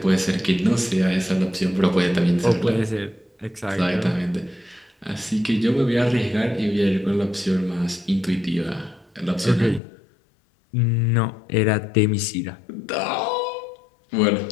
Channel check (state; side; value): drops out; right; at 9.8 s